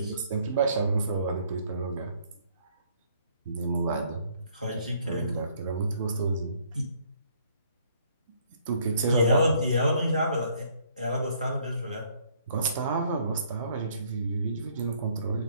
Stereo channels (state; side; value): inverted; both; correlation -0.64